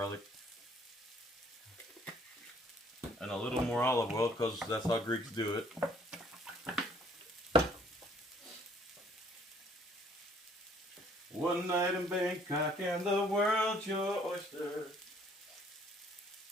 And a little more olive oil because that's how Greeks do it. One night in Bangkok and the world's your oyster.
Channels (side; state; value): both; normal; correlation 0.61